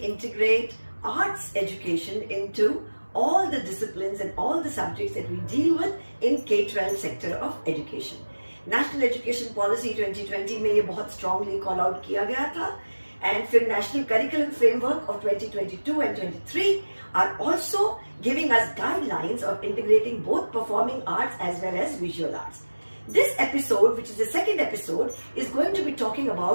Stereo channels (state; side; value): inverted; both; correlation -1.00